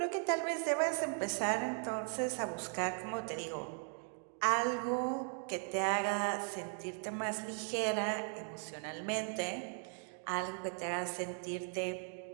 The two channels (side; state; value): left; silent; 52 dB below the other